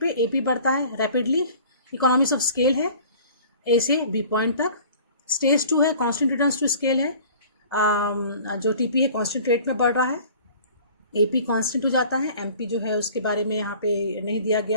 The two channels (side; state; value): both; inverted; correlation -0.47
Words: एपी बढ़ता है रैपिडली, इकोनॉमिक्स ऑफ स्केल है ए से बी पॉइंट तक. स्टेज 2 है कांस्टेंट रिटर्न्स टू स्केल है, जो टीपी है कांस्टेंट रेट में बढ़ रहा है, एपी कांस्टेंट हो जाता है, एमपी जो है उसके बारे में यहाँ पे नहीं दिया